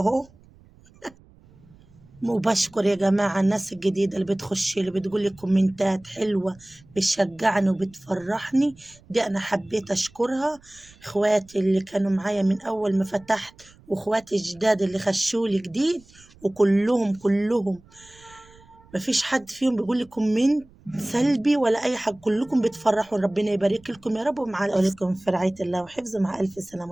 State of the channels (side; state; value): right; noise; rumble, 27 dB below the sound